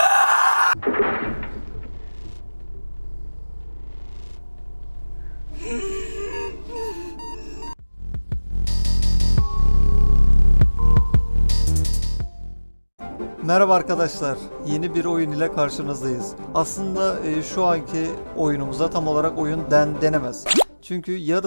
Merhaba arkadaşlar, yeni bir oyun ile karşınızdayız. Aslında şu anki oyunumuza tam olarak oyun denemez. Çünkü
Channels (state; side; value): inverted; both; correlation -1.00